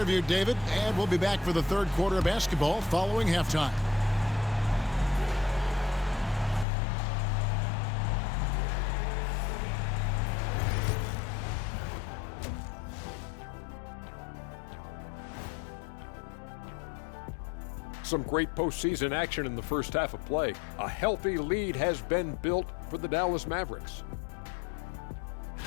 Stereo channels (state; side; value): drops out; right; at 6.7 s